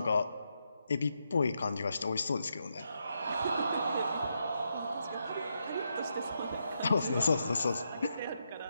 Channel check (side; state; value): both; inverted; correlation -0.82